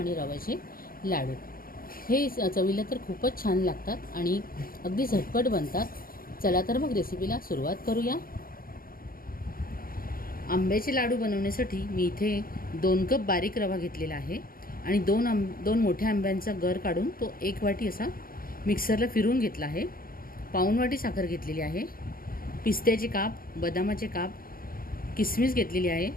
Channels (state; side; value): late; right; 0.42 ms